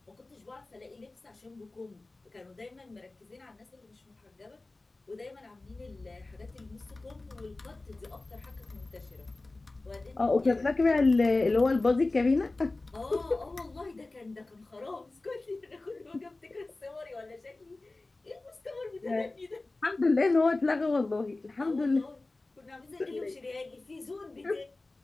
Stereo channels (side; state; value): right; quieter; 3.1 dB